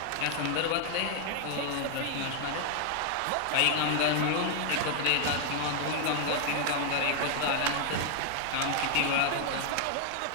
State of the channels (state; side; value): different; both; correlation 0.00